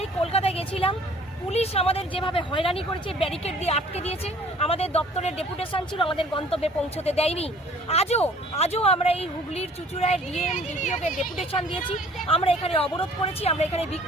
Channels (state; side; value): normal; both; correlation 0.53